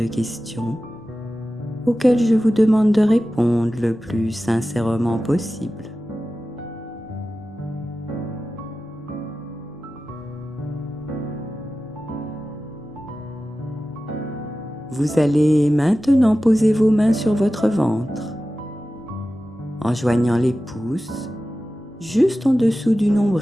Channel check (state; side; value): normal; both; correlation 0.94